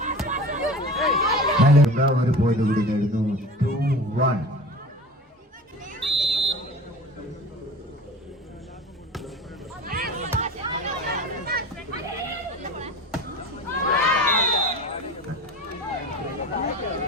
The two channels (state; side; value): normal; both; correlation 0.36